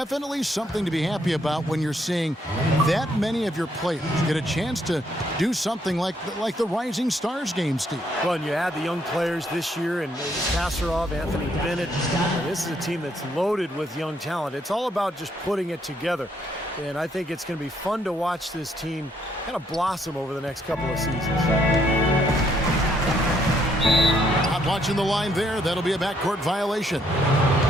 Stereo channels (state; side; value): normal; both; correlation 0.71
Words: something to be happy about when you're seeing that many of your players get a chance to do something like the Rising Stars game, Steve. Well, and you add the young players this year, and Kasparov, Anthony Bennett. This is a team that's loaded with young talent. It's all about just putting it together. And I think it's going to be fun to watch this team kind of blossom over the next couple of seasons. Not watching the line there. That'll be a backcourt violation.